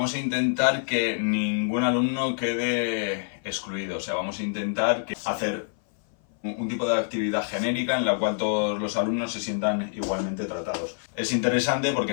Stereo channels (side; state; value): right; silent; 56 dB below the other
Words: a intentar que ningún alumno quede excluido. O sea, vamos a intentar hacer un tipo de actividad genérica en la cual todos los alumnos se sientan igualmente tratados. Es interesante porque